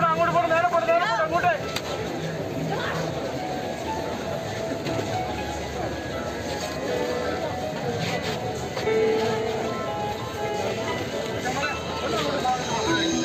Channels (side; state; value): both; identical; correlation 1.00